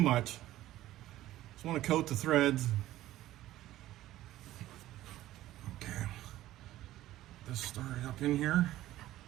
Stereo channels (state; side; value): quieter; left; 14.8 dB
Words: Just want to coat the threads. Okay, this started up in here.